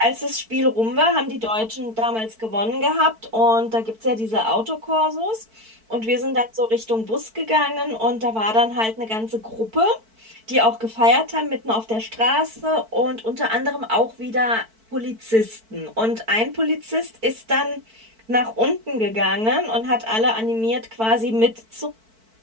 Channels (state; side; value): late; left; 4.5 ms